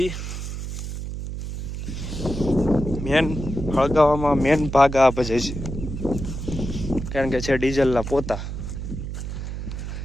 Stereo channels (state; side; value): noise; right; hum, 6 dB below the sound